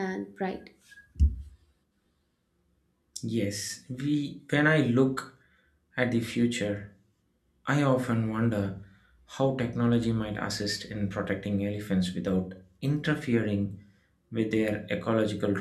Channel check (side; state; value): both; identical; correlation 1.00